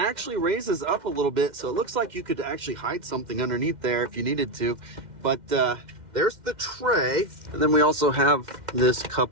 raises up a little bit, so it looks like you could actually hide something underneath there if you needed to. But there's the tray, and then we also have this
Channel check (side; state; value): left; late; 2.1 ms